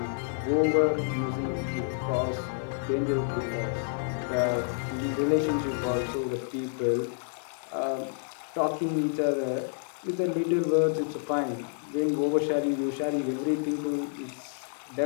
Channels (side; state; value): right; silent; digital silence